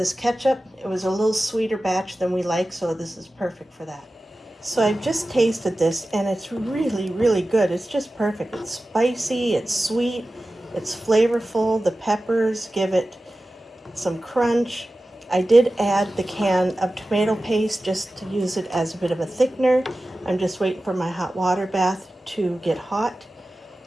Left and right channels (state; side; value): normal; both; correlation 0.95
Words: ketchup. It was a little sweeter batch than we like, so this is perfect for that. So I've just tasted this, and it's really, really good. It's just perfect. It's spicy, it's sweet, it's flavorful. The peppers give it some crunch. I did add the can of tomato paste just to use it as a bit of a thickener. I'm just waiting for my hot water bath to get hot.